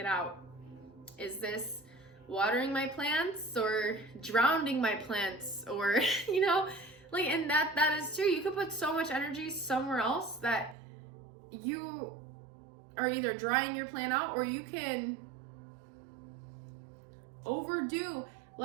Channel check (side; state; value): left; drops out; at 10.8 s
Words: out? Is this watering my plants or drowning my plants? Or and that is true. You could put so much energy somewhere else that you are either drying your plant out, or you can overdo.